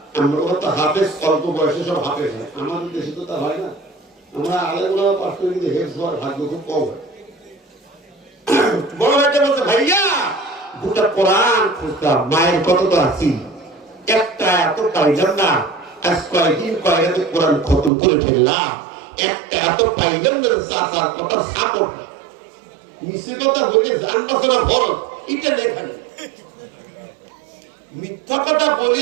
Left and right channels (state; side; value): drops out; left; at 17.9 s